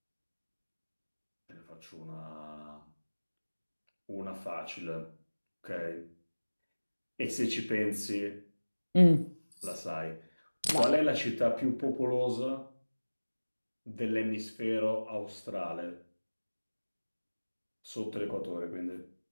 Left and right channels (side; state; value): both; inverted; correlation -1.00